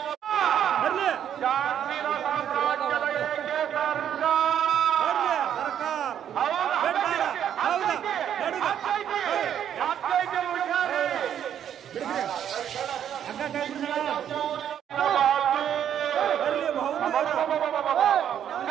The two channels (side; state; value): left; quieter; 9.6 dB